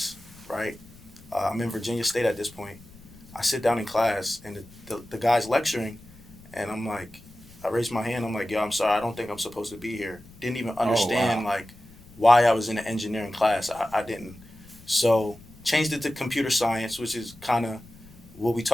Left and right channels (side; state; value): left; noise; rumble, 22 dB below the sound